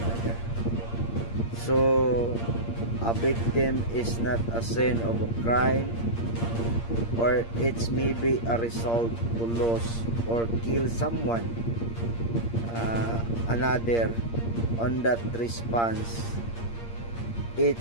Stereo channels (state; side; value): late; right; 8.7 ms